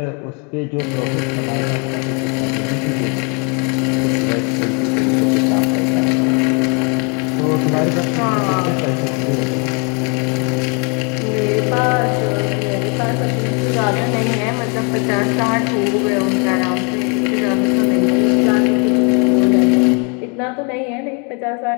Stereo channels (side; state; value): right; quieter; 35.6 dB